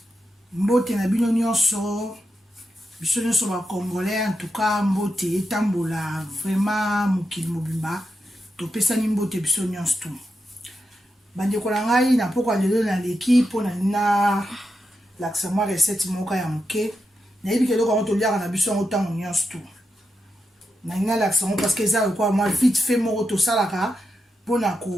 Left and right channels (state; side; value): normal; both; correlation 0.87